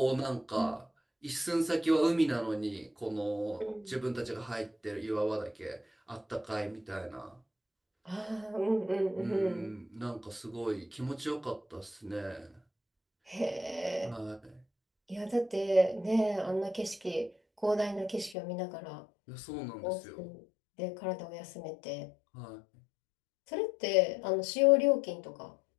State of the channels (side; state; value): right; drops out; at 18.4 s